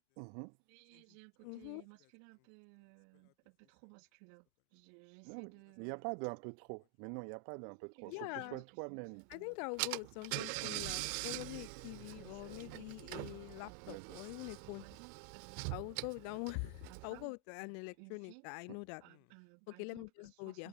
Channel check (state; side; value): different; both; correlation 0.00